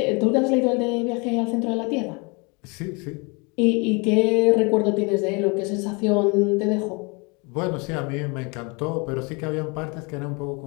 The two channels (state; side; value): quieter; right; 30.5 dB